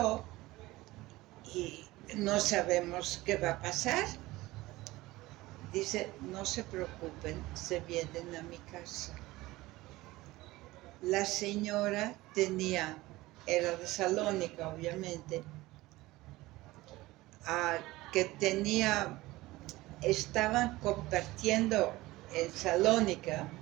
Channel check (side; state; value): left; quieter; 19.0 dB